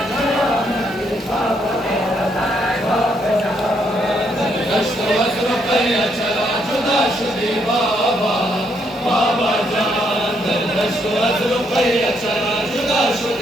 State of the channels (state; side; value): normal; both; correlation 0.74